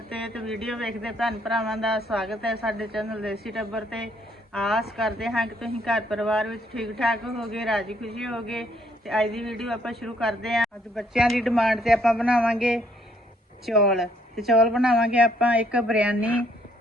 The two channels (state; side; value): normal; both; correlation 0.68